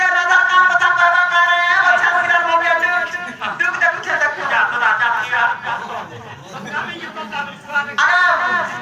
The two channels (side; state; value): both; identical; correlation 1.00